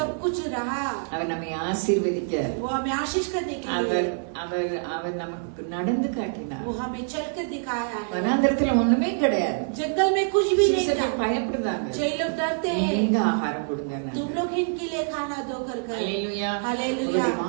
कुछ रहा, அவர் நம்மை ஆசீர்வதிக்க, वो हमें आशीष करने के लिए, அவர் அவர் அவர் நமக்கு நடந்து காட்டினார். वो हमें चलकर दिखाया है। வனாந்தரத்துல ஒண்ணுமே கிடையாது. जंगल में कुछ भी नहीं था, சீசர்கள் பயப்படுறாங்க. कई लोग डरते हैं, நீங்க ஆகாரம் கொடுங்க. तुम लोग इनके लिए खाना दो कर ஹல்லேலூயா. हालेलुया। உங்களுடைய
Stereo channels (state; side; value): silent; left; 61 dB below the other